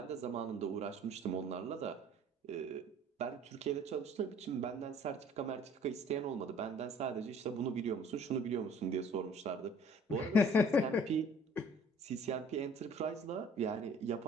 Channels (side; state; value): both; normal; correlation 0.53